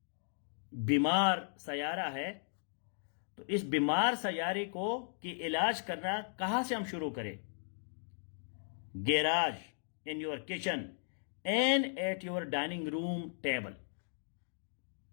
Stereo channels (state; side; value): silent; right; digital silence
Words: बीमार सयारा है, तो इस बीमार सयारे को कि इलाज करना कहां से हम शुरू करें? Garage, in your kitchen and at your dining room table.